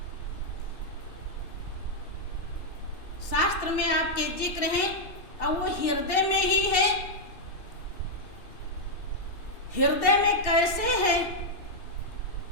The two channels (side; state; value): right; late; 2.7 ms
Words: शास्त्र में आपके जिक्र है, और वो हृदय में ही है। हृदय में कैसे है,